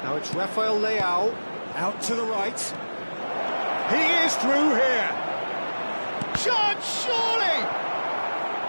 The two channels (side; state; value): both; inverted; correlation -1.00